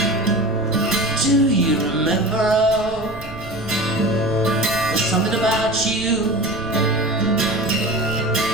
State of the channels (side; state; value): right; noise; rumble, 14 dB below the sound